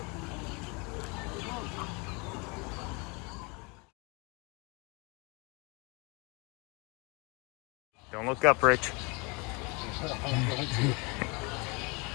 Don't look up, Rich.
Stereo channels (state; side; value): quieter; right; 29.9 dB